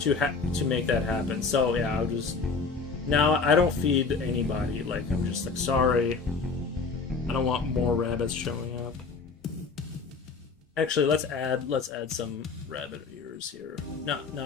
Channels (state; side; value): quieter; right; 4.6 dB